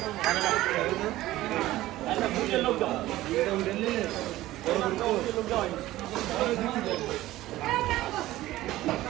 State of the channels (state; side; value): quieter; left; 16.1 dB